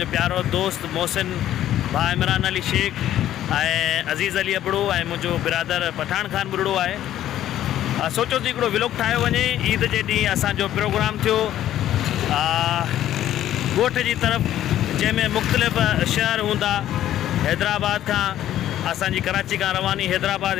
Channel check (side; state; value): right; quieter; 12.3 dB